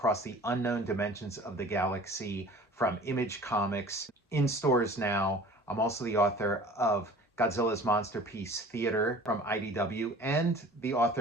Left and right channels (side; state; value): both; normal; correlation 0.45